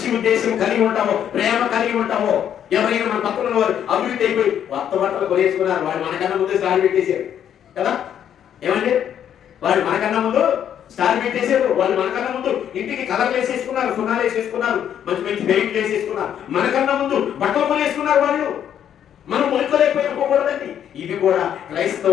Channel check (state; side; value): quieter; right; 9.5 dB